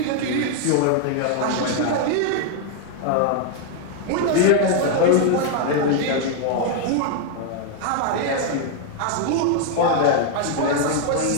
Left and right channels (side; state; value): both; different; correlation 0.00